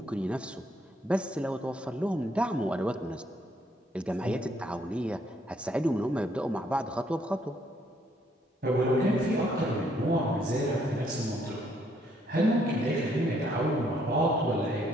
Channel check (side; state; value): both; normal; correlation 0.69